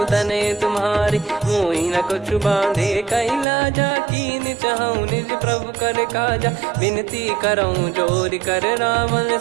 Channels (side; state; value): left; drops out; at 3.5 s